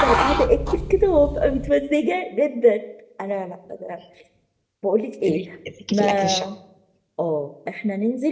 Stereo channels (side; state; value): both; identical; correlation 1.00